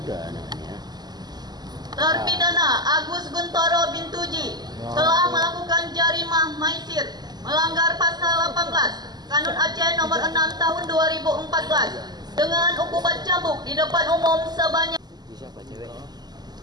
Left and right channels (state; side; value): late; left; 0.20 ms